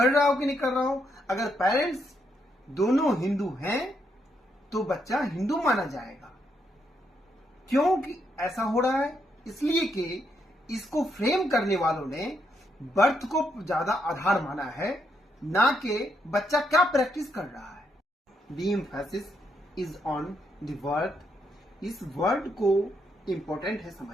रहा हो कि नहीं कर रहा हो, अगर पेरेंट्स दोनों हिंदू हैं तो बच्चा हिंदू माना जाएगा. क्योंकि ऐसा हो रहा है इसलिए कि इसको फ्रेम करने वालों ने बर्थ को ज्यादा आधार माना है, ना कि बच्चा क्या प्रैक्टिस कर रहा है. The emphasis is on the word. इस वर्ड को इंपॉर्टेंट है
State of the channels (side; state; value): both; normal; correlation 0.77